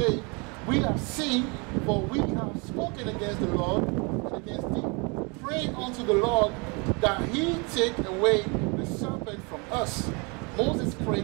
we have sinned, for we have spoken against the Lord and against thee. praying unto the Lord that he take away the serpent from us. Moses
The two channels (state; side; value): quieter; left; 31.2 dB